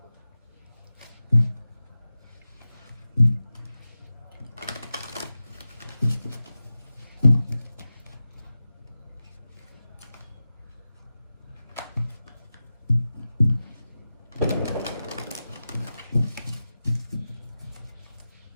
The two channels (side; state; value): both; inverted; correlation -0.94